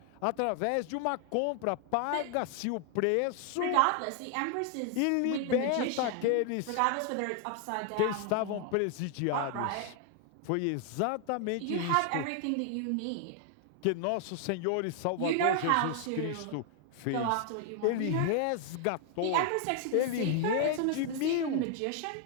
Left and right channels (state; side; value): different; both; correlation 0.00